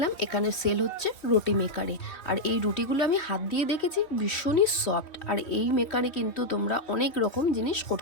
এখানে সেল হচ্ছে রুটি মেকারে। আর এই রুটিগুলো আমি হাত দিয়ে দেখেছি, ভীষণই সফট। আর এই মেকারে কিন্তু তোমরা অনেক রকম জিনিস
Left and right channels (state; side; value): late; right; 3.0 ms